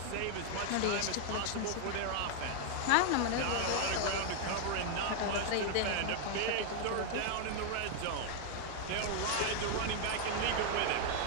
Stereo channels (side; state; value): both; different; correlation 0.00